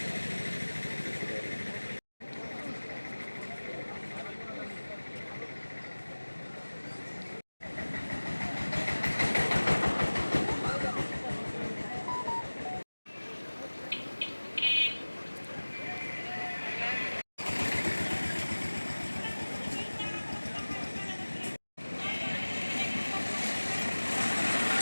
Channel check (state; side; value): inverted; both; correlation -1.00